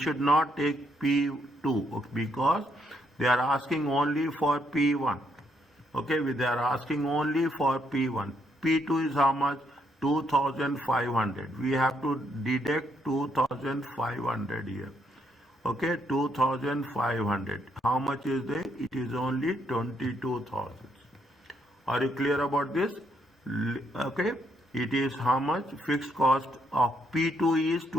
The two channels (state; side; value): normal; both; correlation 0.74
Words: not take P2 because they are asking only for P1. Okay, they are asking only for P1. P2 is how much? 2,500. We have to deduct 2,500 here. Okay, 2,500. How much is there? It is only 22,000. Are you clear about this? Okay, it is how much? Fixed cost of P2 is